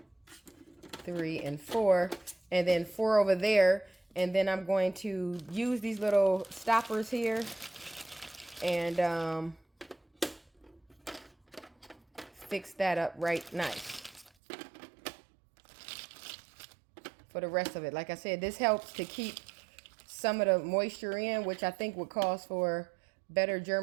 3, and 4, and then 4 over there. And then I'm going to use these little stoppers here and fix that up right nice for the rest of it. Like I said, this helps to keep some of the moisture in, which I think would cause for better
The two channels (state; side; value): drops out; left; at 14.3 s